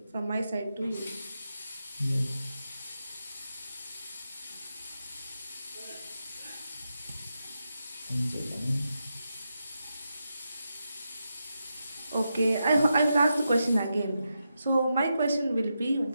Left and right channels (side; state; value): both; inverted; correlation -0.86